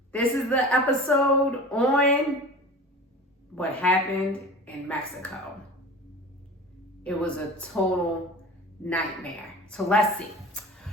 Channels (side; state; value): both; normal; correlation 0.36